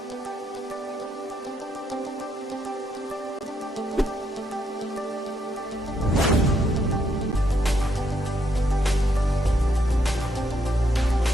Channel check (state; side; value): normal; both; correlation 0.75